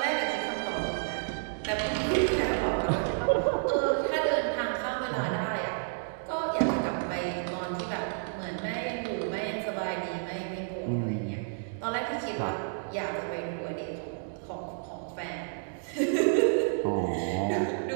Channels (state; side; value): silent; left; digital silence